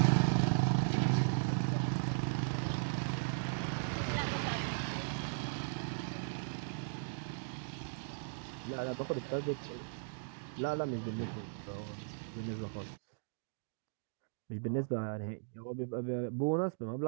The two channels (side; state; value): left; silent; digital silence